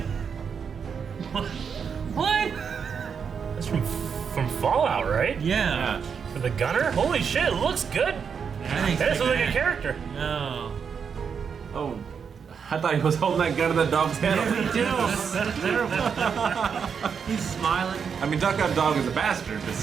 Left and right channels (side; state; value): left; quieter; 6.6 dB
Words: What? That's from Fallout, right? Yeah. For the gunner? Holy shit, it looks good. Thanks, That looks like a man. character. Oh. Oh, I thought he was holding that gun in the dog's hand. Yeah, me too. That's terrible. He's smiling. I mean, Duck Out Dog is a bastard, but